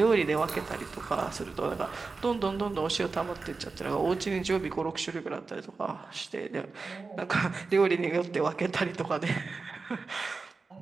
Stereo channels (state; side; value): quieter; left; 4.2 dB